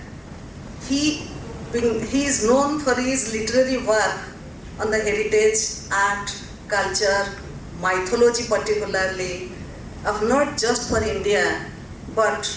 he is known for his literary work on the heritage, art, culture, mythology particularly, of not just for India, but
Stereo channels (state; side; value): identical; both; correlation 1.00